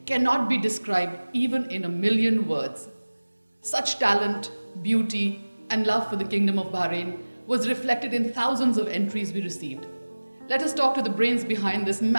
cannot be described even in a million words. Such talent, beauty, and love for the Kingdom of Bahrain was reflected in thousands of entries we received. Let us talk to the brains behind this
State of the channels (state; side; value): inverted; both; correlation -1.00